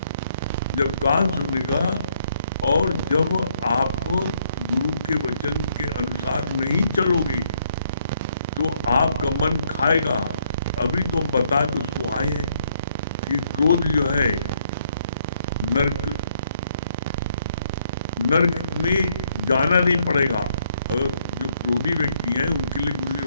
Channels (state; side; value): inverted; both; correlation -0.71